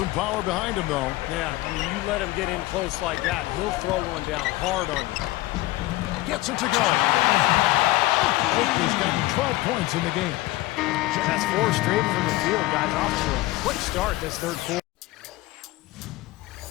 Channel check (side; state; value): right; quieter; 18.5 dB